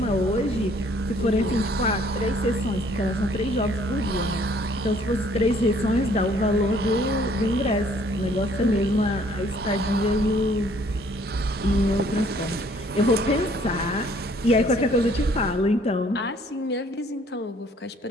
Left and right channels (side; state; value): both; normal; correlation 0.60